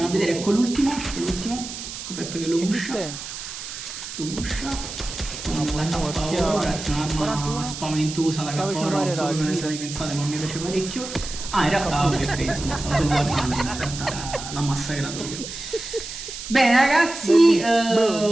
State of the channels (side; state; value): right; noise; hiss, 9 dB below the sound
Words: a vedere con l'ultimo, con Pep che lo pusha, ragazzi, un'arma spaventosa la K-Oro, non so come ne state pensate ma mi piace parecchio. In realtà ok, insomma stavo solo guardando, in realtà l'ha massacrato io. Bene ragazzi,